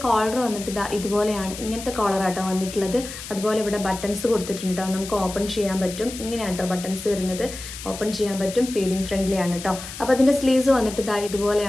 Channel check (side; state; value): left; noise; hiss, 11 dB below the sound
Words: കോളർ വന്നിട്ട് ഇതുപോലെയാണ്, ഇങ്ങനത്തെ കോളറാട്ടോ വന്നിട്ടുള്ളത്. അതുപോലെ ഇവിടെ ബട്ടൺസ് കൊടുത്തിട്ടുണ്ട് കേട്ടോ, നമുക്ക് ഓപ്പൺ ചെയ്യാൻ പറ്റും. ഇങ്ങനെയാണ് കേട്ടോ ബട്ടൺസ് വരുന്നത്, ഓപ്പൺ ചെയ്യാൻ പറ്റും. ഫീഡിങ് ഫ്രണ്ട്ലി ആണ് കേട്ടോ. അപ്പോൾ അതിൻ്റെ സ്ലീവ്സ് വന്നിട്ട്